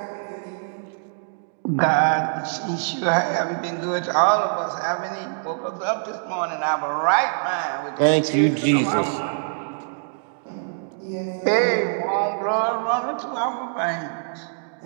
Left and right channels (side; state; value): left; silent; digital silence